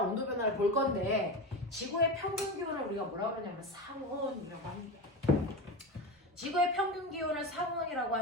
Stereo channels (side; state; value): both; normal; correlation 0.22